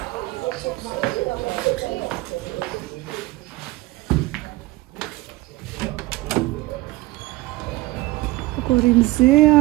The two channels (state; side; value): quieter; left; 19.2 dB